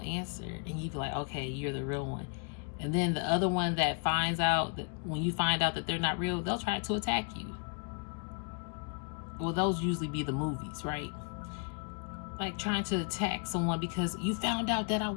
and you be like, okay, you're the real one. And then the other one that finds out that when you find out that they're not real, they'll try to attack you. Well, those usually be the movies, right? Like trying to attack someone because you found out that I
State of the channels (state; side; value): quieter; right; 39.3 dB